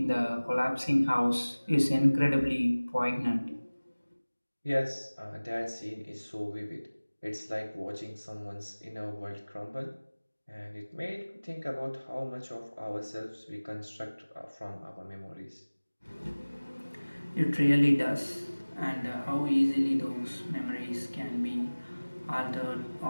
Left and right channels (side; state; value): both; inverted; correlation -1.00